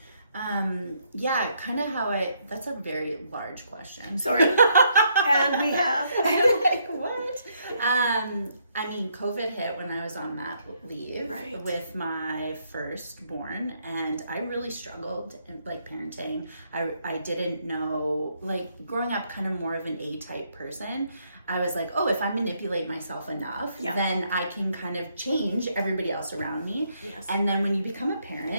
Kind of how that's a very large question. Sorry. And we have. Like, what? I mean, COVID hit when I was on mat leave with my firstborn, and I really struggled in parenting. I didn't know, growing up kind of more of an A-type person. I was like, oh, if I manipulate myself enough, then I can kind of change everybody else around me. And then when you become a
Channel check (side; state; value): both; inverted; correlation -0.73